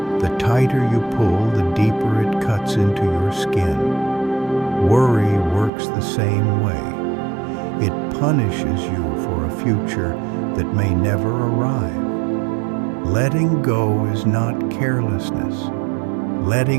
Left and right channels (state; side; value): drops out; left; at 5.7 s